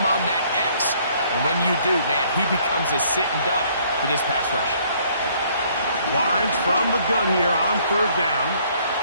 on that X. And when you do, man, he becomes a sitting duck for this pass rush. Lawrence from the gun here on third down.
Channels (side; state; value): both; inverted; correlation -0.63